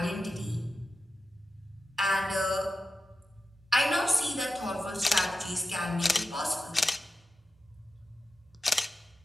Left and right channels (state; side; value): normal; both; correlation 0.92